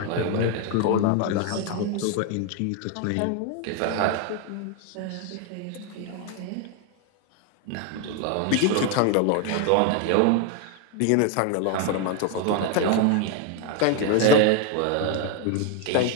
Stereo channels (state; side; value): different; both; correlation 0.01